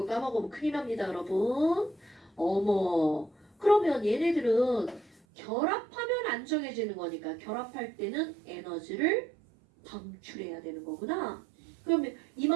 까먹으면 큰일 납니다, 여러분. 어머. 그러면 얘네들은 결합하면 안정해지는 거니까 결합할 때는 에너지를 방출해야 되는 거구나. 그러면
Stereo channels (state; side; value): drops out; left; at 5.2 s